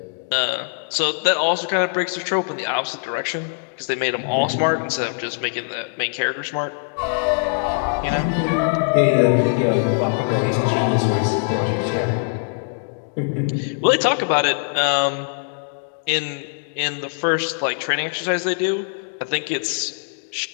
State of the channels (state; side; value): silent; right; digital silence